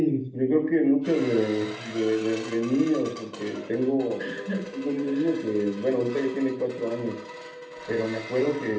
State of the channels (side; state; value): both; identical; correlation 1.00